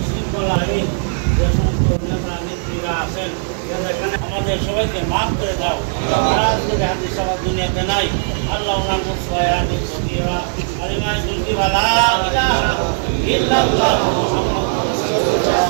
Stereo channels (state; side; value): silent; left; digital silence